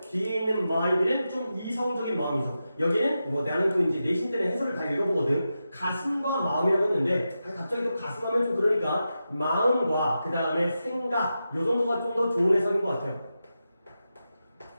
뒤에 있는 mind는 좀 이성적인 마음이죠. 여기는 나는 또 이제 내신들의 해설을 다 읽어보거든. 가슴과 마음이라고 했는데 갑자기 또 가슴 하면 좀 그러니까 마음과 그 다음에 생각 요 정도가 좀 더 좋은 해석인 것 같아요.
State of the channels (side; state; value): both; inverted; correlation -0.90